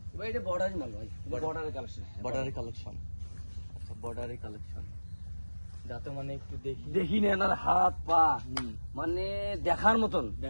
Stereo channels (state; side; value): inverted; both; correlation -1.00